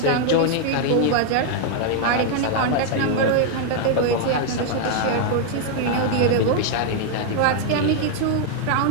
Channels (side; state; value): both; different; correlation 0.00